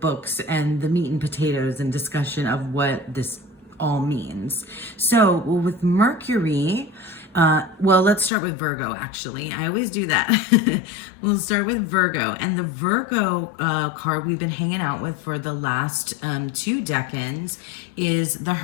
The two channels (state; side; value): drops out; right; at 8.3 s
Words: and the meat and potatoes and discussion of what this all means. So with Mercury, let's start with Virgo, actually. I always do that. We'll start with Virgo. And the Virgo card we've been hanging out with for the last 2 decans is the